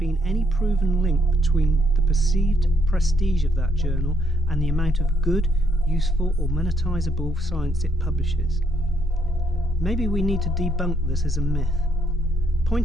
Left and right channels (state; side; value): normal; both; correlation 0.73